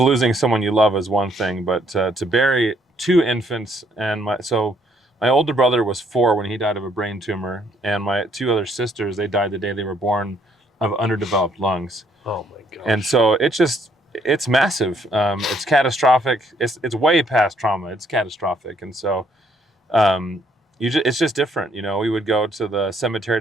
someone you love is one thing, but to bury 2 infants, and my older brother was 4 when he died of a brain tumor, and my 2 other sisters, they died the day they were born of underdeveloped lungs. Oh my gosh. And so it's massive. It's catastrophic. It's way past trauma. It's catastrophic. And so it's just different. We would go to the cemetery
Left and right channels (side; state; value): both; normal; correlation 0.68